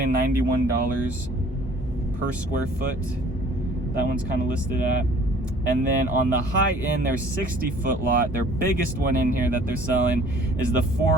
per square foot. That one's kind of listed at. And then on the high end, their 60-foot lot, their biggest one in here that they're selling is the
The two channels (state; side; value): normal; both; correlation 0.53